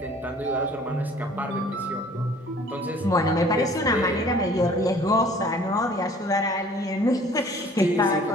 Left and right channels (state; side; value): normal; both; correlation 0.52